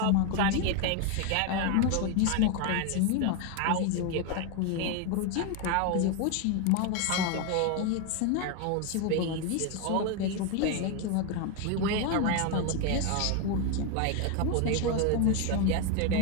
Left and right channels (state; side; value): different; both; correlation 0.02